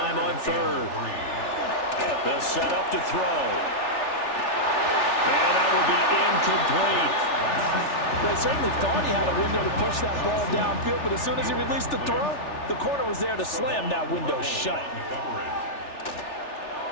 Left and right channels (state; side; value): late; right; 3.4 ms